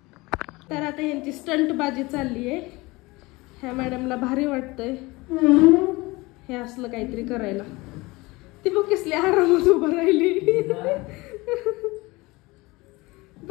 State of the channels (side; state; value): right; quieter; 22.6 dB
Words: तर आता यांची स्टंटबाजी चालली आहे. ह्या मॅडमला भारी वाटतंय हे असलं काहीतरी करायला. ती बघ कसली आरामात उभं राहिली,